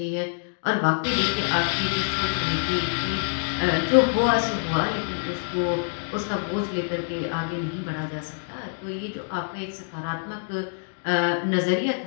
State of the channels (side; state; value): right; silent; digital silence